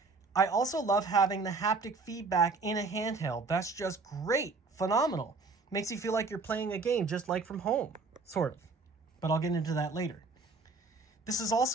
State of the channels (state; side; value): quieter; left; 4.0 dB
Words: I also love having the haptic feedback in a handheld. That's just great, phenomenal. Makes you feel like you're playing a game just like from home, sort of. But I'll get into that later. This is